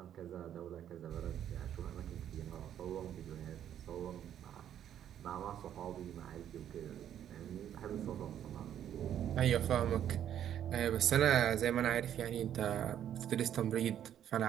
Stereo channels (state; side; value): quieter; left; 10.3 dB